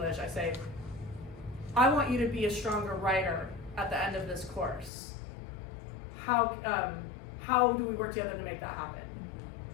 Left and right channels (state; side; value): drops out; right; at 4.9 s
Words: I say, I want you to be a stronger writer at the end of this course. How do we work together to make that happen?